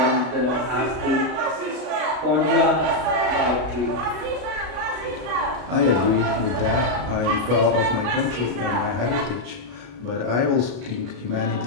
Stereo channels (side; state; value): left; late; 33 ms